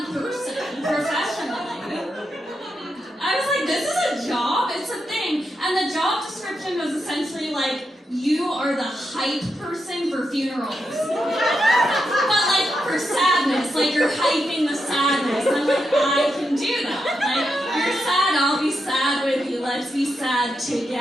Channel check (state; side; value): normal; both; correlation 0.85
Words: person, professionally. I was like, this is a job? It's a thing. And the job description was essentially like, you are the hype person for funerals. But like for sadness, like you're hyping the sadness. I'm like, I can do that. Like, you're sad, I'll be sad with you. Let's be sad